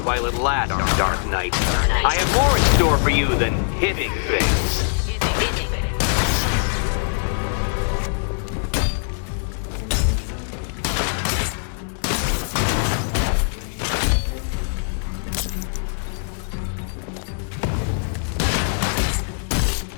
while it lasts, Dark Knight. I have more in store for you than hitting things.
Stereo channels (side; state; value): right; silent; digital silence